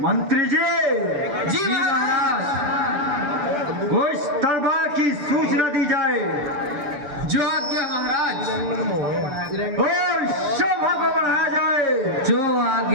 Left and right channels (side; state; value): left; late; 6.9 ms